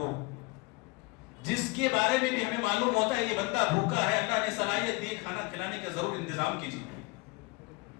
جس کے بارے میں بھی ہمیں معلوم ہوتا ہے یہ بندہ بھوکا ہے، اللہ نے صلاحیت دی کھانا کھلانے کا ضرور انتظام کیجیے.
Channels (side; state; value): right; quieter; 26.2 dB